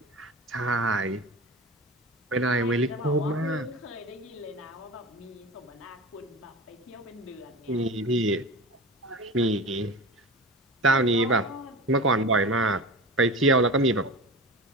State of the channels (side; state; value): both; normal; correlation 0.31